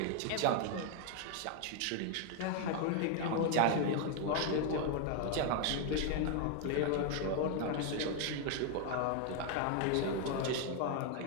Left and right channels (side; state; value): both; different; correlation 0.01